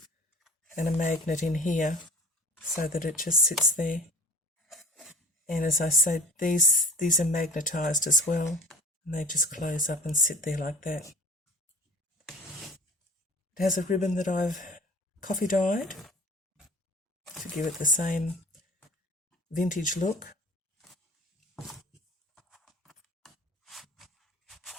and a magnet in here so that it just sits there. And as I said, these are magnetised as well, and they just close up and sit there like that. It has a ribbon that I've coffee dyed to give it the same vintage look.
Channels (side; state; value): both; normal; correlation 0.41